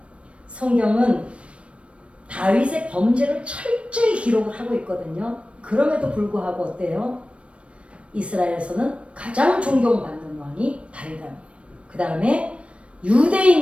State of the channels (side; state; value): left; late; 0.061 ms